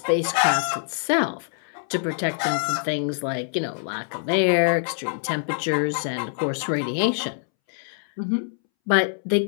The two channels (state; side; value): silent; right; 62 dB below the other